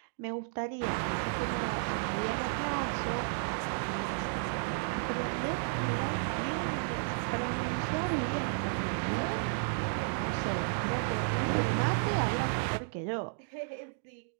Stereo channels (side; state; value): left; silent; digital silence